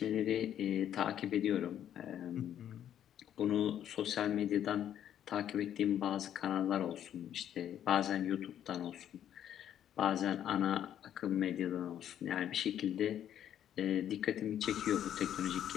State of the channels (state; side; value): quieter; right; 10.4 dB